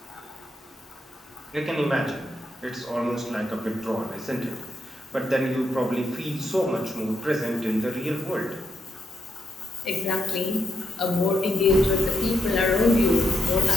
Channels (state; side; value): normal; both; correlation 0.81